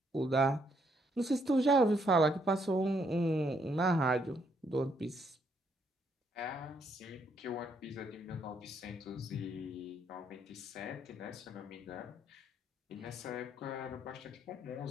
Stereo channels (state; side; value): normal; both; correlation 0.72